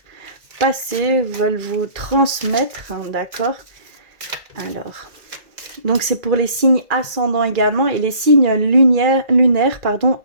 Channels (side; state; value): left; late; 2.4 ms